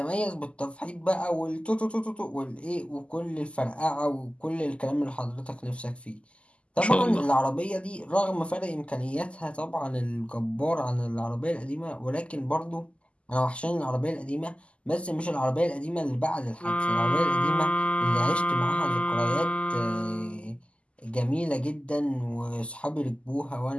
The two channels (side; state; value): right; late; 0.056 ms